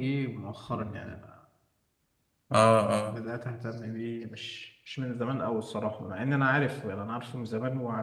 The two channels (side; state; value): both; identical; correlation 1.00